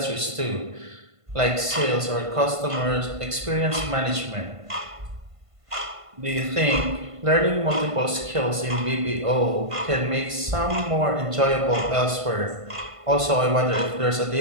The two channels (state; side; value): late; left; 1.5 ms